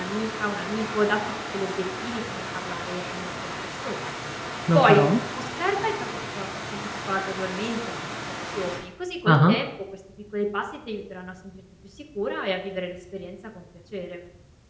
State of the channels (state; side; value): identical; both; correlation 1.00